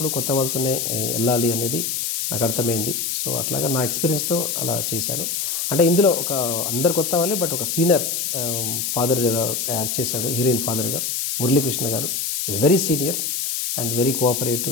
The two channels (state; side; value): noise; left; hiss, 1 dB below the sound